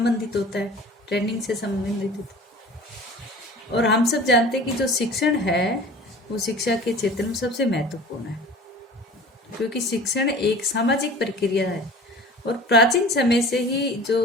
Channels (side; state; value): both; normal; correlation 0.41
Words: होता है, ट्रेनिंग से संबंधित होता है। और हम सब जानते हैं कि जो शिक्षण है वो शिक्षा के क्षेत्र में सबसे महत्वपूर्ण है, क्योंकि शिक्षण एक सामाजिक प्रक्रिया है और प्राचीन समय से ही जो